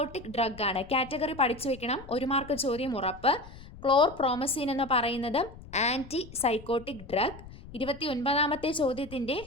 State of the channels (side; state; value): left; noise; rumble, 17 dB below the sound